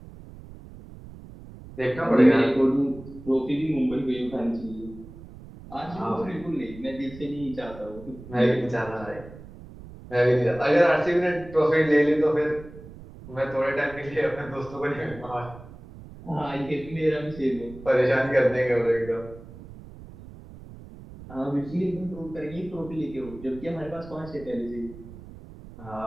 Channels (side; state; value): right; noise; rumble, 17 dB below the sound